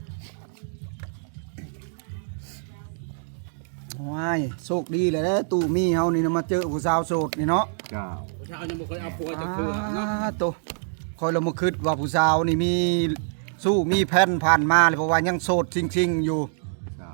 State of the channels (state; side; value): silent; left; digital silence